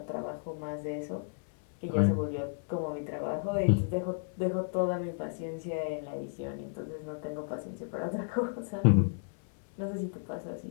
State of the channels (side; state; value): right; silent; 56 dB below the other